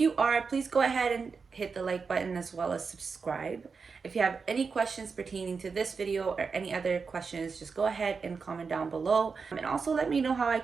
are, please go ahead and hit the like button as well as subscribe. If you have any questions pertaining to this video or any other questions, just go ahead and comment down below. And also let me know how I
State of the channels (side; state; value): left; quieter; 5.1 dB